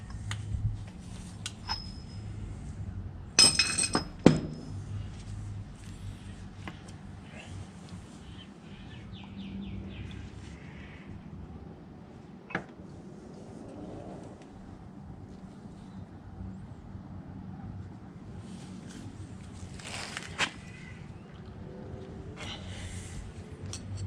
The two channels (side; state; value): both; identical; correlation 1.00